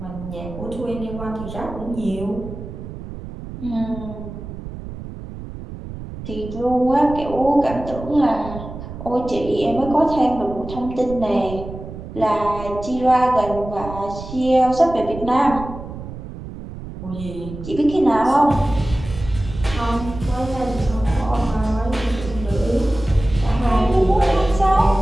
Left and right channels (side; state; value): right; noise; rumble, 11 dB below the sound